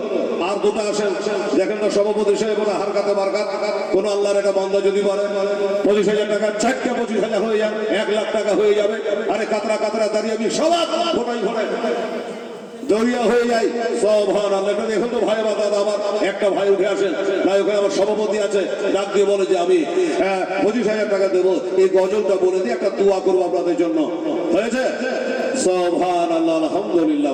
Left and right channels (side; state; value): both; identical; correlation 1.00